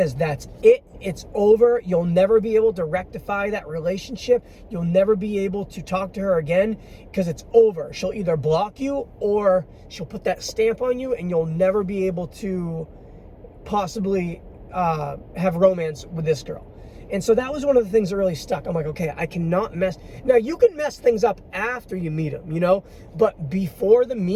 that's it. It's over. You'll never be able to rectify that relationship. You'll never be able to talk to her again because it's over. She'll either block you or she'll put that stamp on you, and you'll never be able to possibly have romance with this girl. And so that was one of the things that really stuck. I'm like, okay, I cannot mess. Now, you can mess things up after you meet him, you know, but before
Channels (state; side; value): identical; both; correlation 1.00